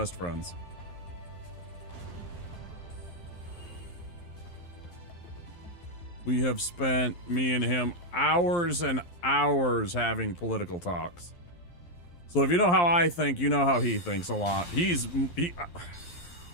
friends. We have spent, me and him, hours and hours having political talks. So if you know how I think, you know how he thinks a lot.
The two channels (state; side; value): late; right; 11 ms